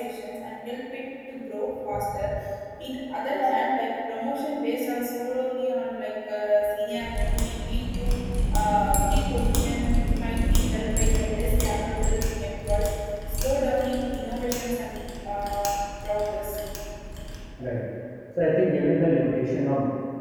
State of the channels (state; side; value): identical; both; correlation 1.00